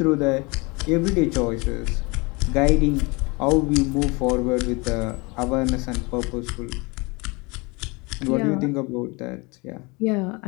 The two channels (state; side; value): quieter; right; 26.9 dB